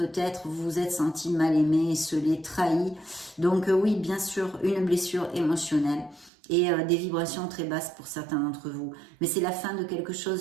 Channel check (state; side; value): drops out; left; at 6.3 s